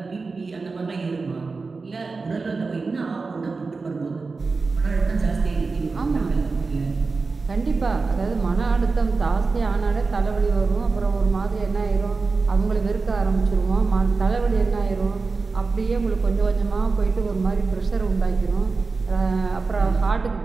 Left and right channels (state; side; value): quieter; left; 4.1 dB